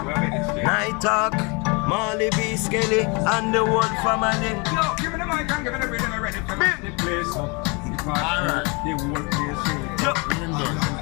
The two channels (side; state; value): right; quieter; 30.3 dB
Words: night talk, Marley B. Skelly, and the whole family. Yo, give me the mic and give me the rhythm ready to make the place up. Alright. The whole place up.